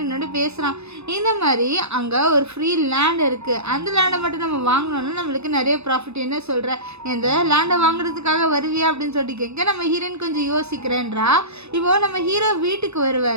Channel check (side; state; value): left; late; 0.80 ms